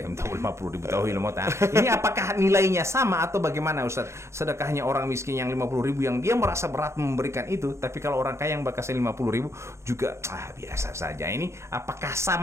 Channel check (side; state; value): left; late; 0.13 ms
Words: 50.000 tahu ilmu. Ini apakah nilainya sama atau bagaimana Ustadz? Sedekahnya orang miskin yang 50.000 yang dia merasa berat memberikan itu, tapi kalau orang kaya yang bakasnya 50.000 juga biasa saja. Ini apakah